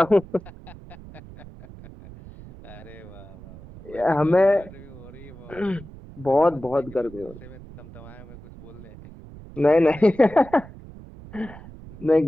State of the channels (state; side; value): noise; right; rumble, 17 dB below the sound